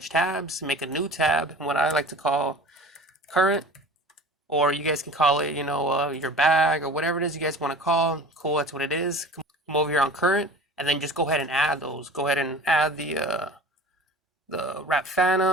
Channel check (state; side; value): normal; both; correlation 0.40